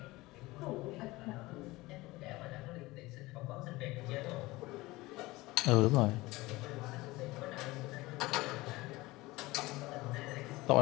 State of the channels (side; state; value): right; quieter; 20.3 dB